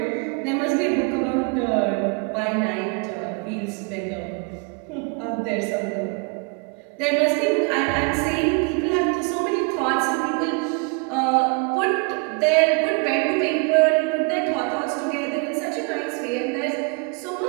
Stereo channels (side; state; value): left; quieter; 33.8 dB